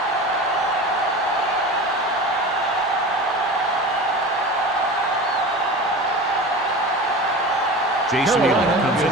Jason Elam comes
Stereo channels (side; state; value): both; normal; correlation 0.32